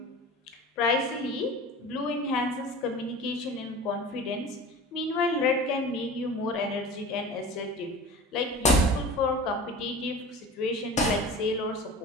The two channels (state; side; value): normal; both; correlation 0.36